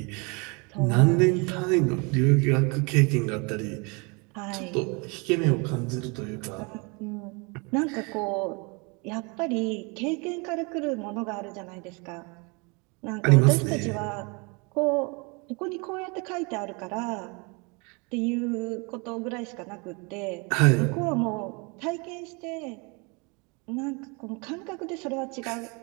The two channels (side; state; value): left; quieter; 30.4 dB